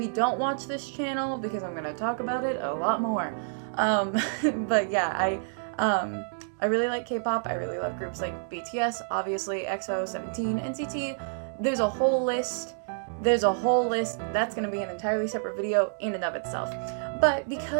don't watch this channel because I'm gonna talk about it a lot more. But yeah, I really like K-pop. I really love groups like BTS, obviously, EXO, 17, NCT. There's a whole list. That's gonna be an entirely separate video in and of itself. But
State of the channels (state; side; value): silent; left; digital silence